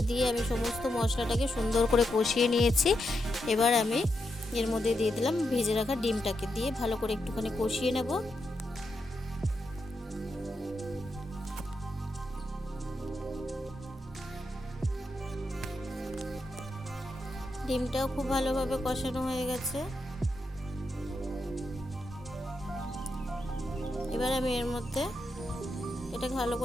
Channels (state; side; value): normal; both; correlation 0.84